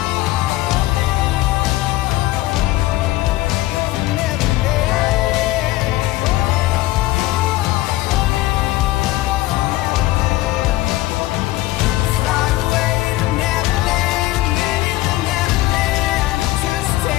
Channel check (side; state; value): right; quieter; 17.5 dB